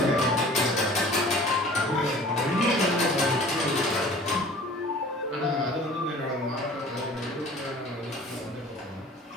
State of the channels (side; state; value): both; normal; correlation 0.46